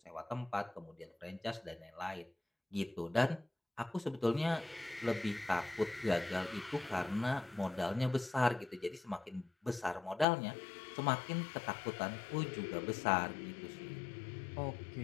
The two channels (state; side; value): drops out; right; at 10.2 s